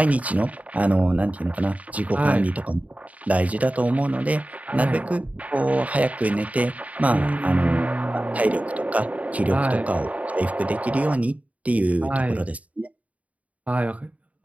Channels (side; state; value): left; late; 0.069 ms